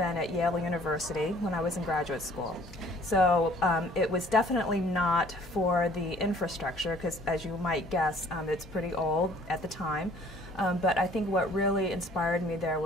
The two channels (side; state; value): both; normal; correlation 0.56